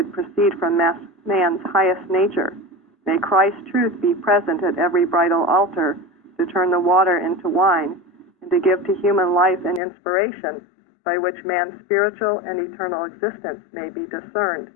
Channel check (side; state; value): right; drops out; at 9.8 s